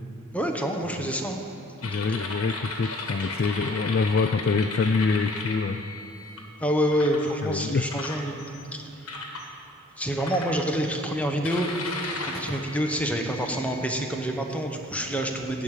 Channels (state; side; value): normal; both; correlation 0.56